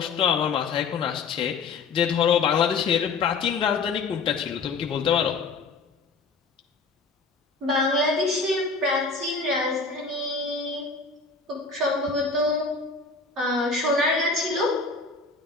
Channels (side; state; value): right; quieter; 4.3 dB